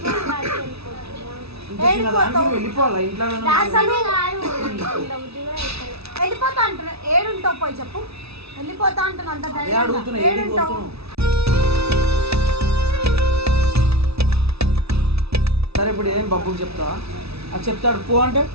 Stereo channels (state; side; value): late; left; 0.78 ms